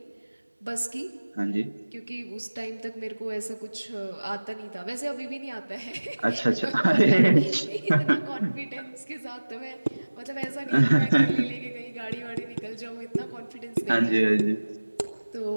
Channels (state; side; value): inverted; both; correlation -1.00